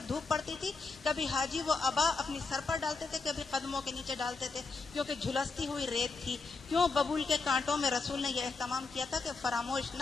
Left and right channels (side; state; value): right; quieter; 4.2 dB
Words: دھوپ پڑتی تھی, کبھی حاجی وہ ابا اپنی سر پر ڈالتے تھے, کبھی قدموں کے نیچے ڈالتے تھے, کیونکہ جھلستی ہوئی ریت تھی. کیوں؟ ببول کے کانٹوں میں رسول نے یہ اہتمام کیا تھا کہ فراموش نہ